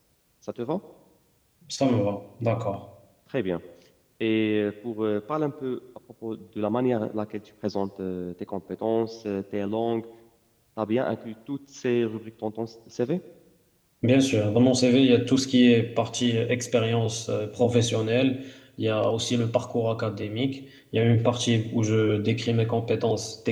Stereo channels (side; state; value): both; identical; correlation 1.00